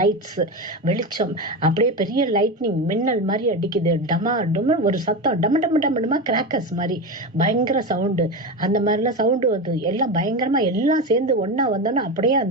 வெளிச்சம், அப்படியே பெரிய லைட்னிங் மின்னல் மாதிரி அடிக்குது. டமா டொம ஒரு சத்தம், டம டம டம கிராக்கர்ஸ் மாதிரி பயங்கர சவுண்டு. அந்த மாதிரிலாம் சவுண்டு வந்து எல்லாம் பயங்கரமா எல்லாம் சேர்ந்து ஒன்னா வந்தோன்னா அப்படியே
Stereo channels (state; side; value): normal; both; correlation 0.19